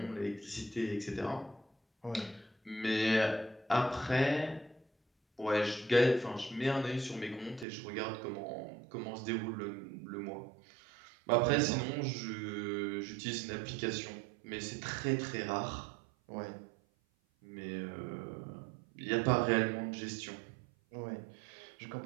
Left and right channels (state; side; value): drops out; left; at 7.7 s